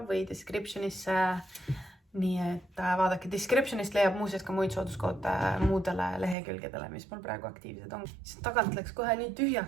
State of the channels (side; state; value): left; drops out; at 6.4 s